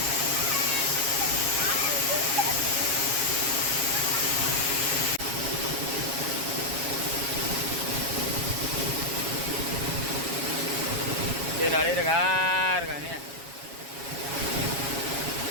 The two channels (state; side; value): late; left; 7.3 ms